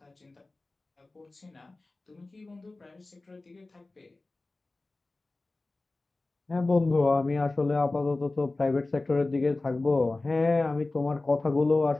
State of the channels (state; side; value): quieter; right; 3.1 dB